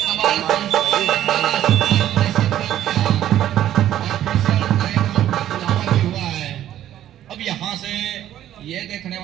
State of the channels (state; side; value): quieter; left; 12.0 dB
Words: अब यहाँ से ये देखने